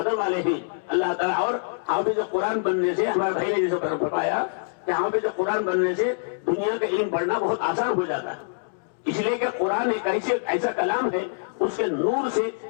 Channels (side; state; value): right; silent; digital silence